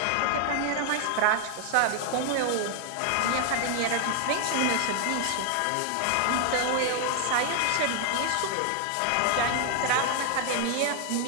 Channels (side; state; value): both; different; correlation 0.00